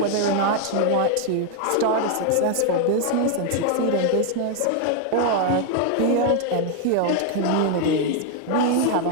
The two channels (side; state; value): both; different; correlation 0.00